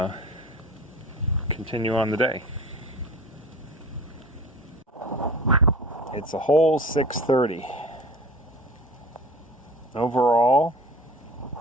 continue on the day. It's a whole 6:30. Overall,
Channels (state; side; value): normal; both; correlation 0.39